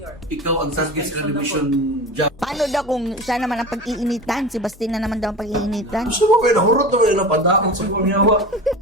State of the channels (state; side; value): normal; both; correlation 0.32